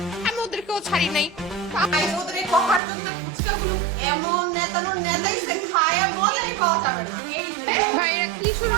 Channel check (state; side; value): drops out; left; at 2.8 s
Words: আমি ওদেরকেও ছাড়ি নাই। তাই ওদের এই কভার জন্য ফুচকাগুলো এমন নেতানো নেতাইছে, খায়া বলেই পাওয়া যাবে না। ভাই এরা কি শুরু